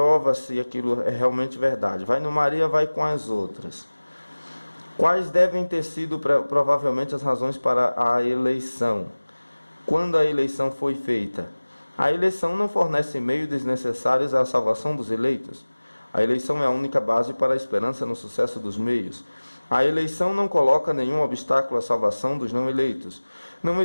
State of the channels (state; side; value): inverted; both; correlation -1.00